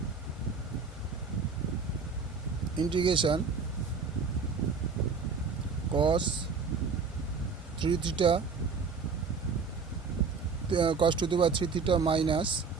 Integration cos 3 theta cos to the power 3 theta minus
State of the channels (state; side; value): quieter; left; 5.1 dB